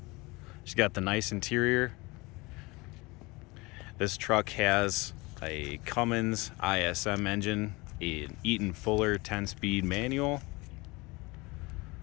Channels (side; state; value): right; quieter; 24.1 dB